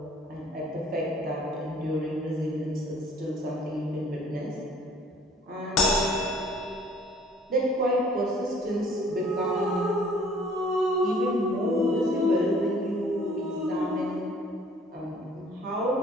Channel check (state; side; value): normal; both; correlation 0.55